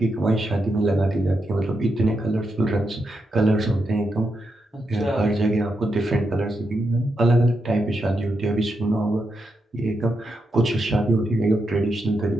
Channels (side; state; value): both; normal; correlation 0.84